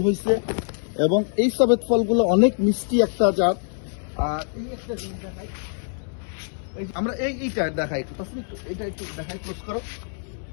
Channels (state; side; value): silent; right; 62 dB below the other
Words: হয়েছে, এবং এই সবেদ ফলগুলো অনেক মিষ্টি একটা জাত। আর এই একটা জিনিস দেখাই, আমরা এইটা দেখাই একটু, এটা একটু দেখাই, ক্লোজ করো।